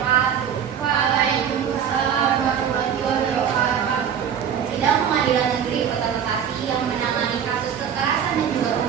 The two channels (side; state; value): left; quieter; 8.3 dB